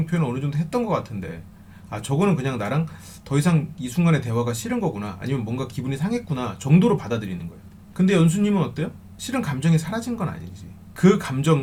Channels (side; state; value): both; identical; correlation 1.00